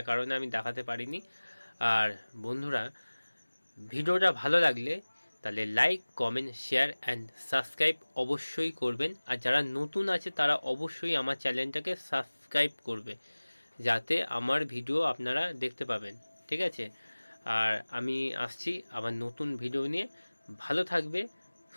কারণে আমি দেখাতে পারিনি। আর বন্ধুরা, ভিডিওটা ভালো লাগলে তাহলে like, comment, share and subscribe অবশ্যই করবেন। আর যারা নতুন আছে তারা অবশ্যই আমার চ্যানেলটাকে সাবস্ক্রাইব করবে, যাতে আমার ভিডিও আপনারা দেখতে পাবেন, ঠিক আছে? আর আমি আসছি আবার নতুন ভিডিও নিয়ে। ভালো থাকবে,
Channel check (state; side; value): inverted; both; correlation -1.00